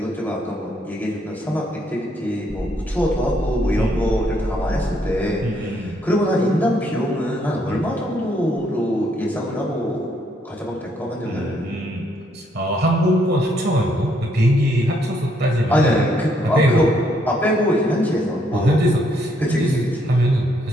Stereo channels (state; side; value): normal; both; correlation 0.72